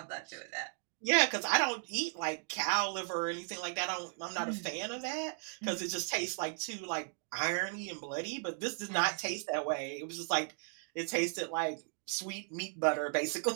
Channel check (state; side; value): silent; left; 54 dB below the other